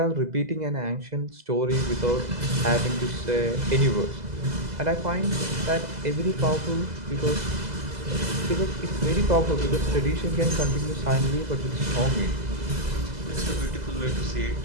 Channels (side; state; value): left; late; 2.0 ms